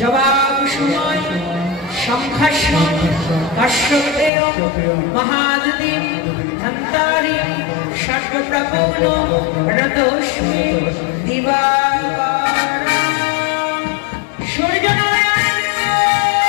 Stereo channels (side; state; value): right; drops out; at 4.3 s